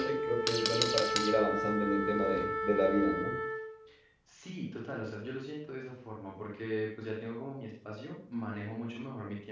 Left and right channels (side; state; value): both; identical; correlation 1.00